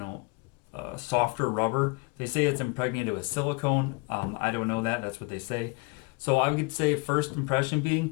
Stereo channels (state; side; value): quieter; right; 26.8 dB